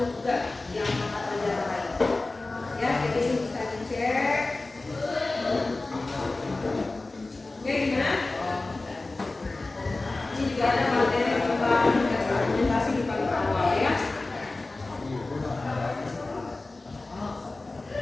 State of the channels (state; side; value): quieter; right; 3.2 dB